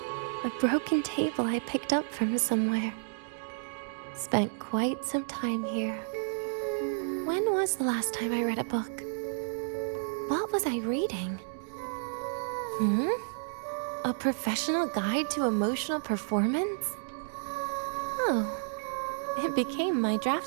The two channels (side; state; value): left; silent; digital silence